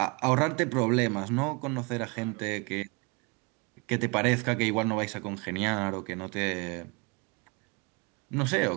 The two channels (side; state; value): left; quieter; 30.3 dB